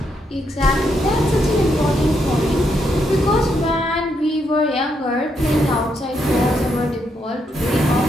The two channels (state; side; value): normal; both; correlation 0.78